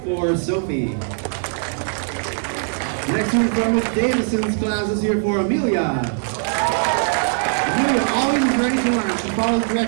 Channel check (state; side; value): silent; left; 61 dB below the other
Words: for Sophie. Next one from Miss Davison's class is here for Amelia. Amelia always is ready to learn. She follows